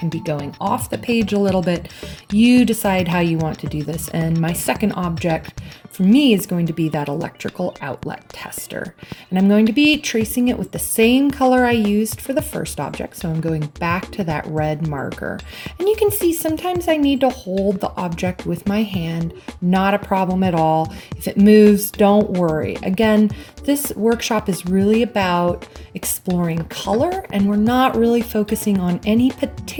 be going off the page a little bit. You decide how you want to do this. And my second object for me is going to be that electrical outlet tester. And I'm going to be tracing it with the same color I used for the first object. So I'm going back to that red marker. And you can see sometimes I need to hold the object with my hand, not a problem at all. If it moves, don't worry. Again, this workshop is really about exploring color, and we're not really focusing on any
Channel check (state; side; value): identical; both; correlation 1.00